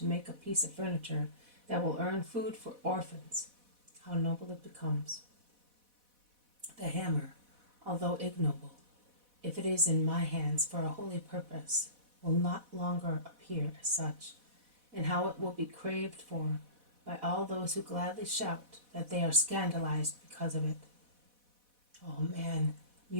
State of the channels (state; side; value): late; left; 4.1 ms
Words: make a piece of furniture that will earn food for orphans, how noble it becomes. The hammer, although ignoble, if it is in my hands for a holy purpose, will not longer appear as such, and how it will be craved for by all those who gladly shout that they are scandalized because of it. Oh man,